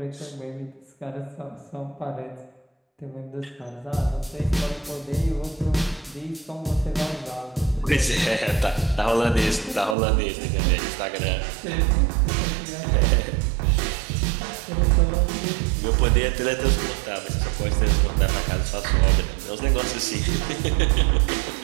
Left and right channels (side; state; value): left; drops out; at 10.0 s